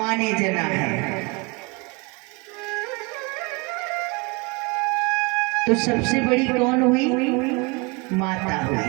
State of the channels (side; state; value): left; quieter; 28.5 dB